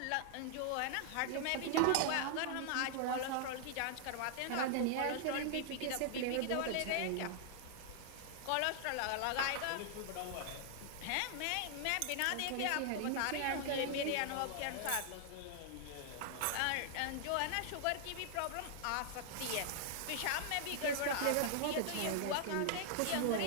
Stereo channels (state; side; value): different; both; correlation -0.01